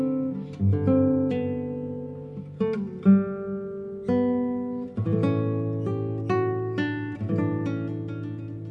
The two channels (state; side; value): identical; both; correlation 1.00